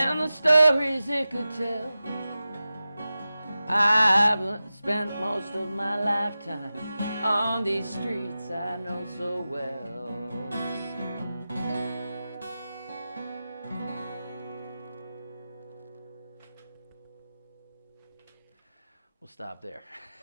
the stories it could tell, I've spent most of my lifetime on these streets I know so well. We'll stop there.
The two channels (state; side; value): inverted; both; correlation -0.94